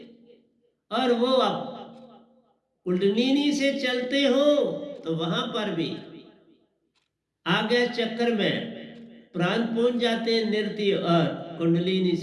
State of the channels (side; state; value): both; identical; correlation 1.00